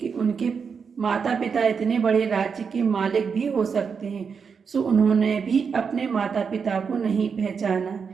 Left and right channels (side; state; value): left; quieter; 6.0 dB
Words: उनके माता पिता इतने बड़े राज्य के मालिक भी हो सकते हैं, सो उन्होंने भी अपने माता पिता को नहीं पहचाना।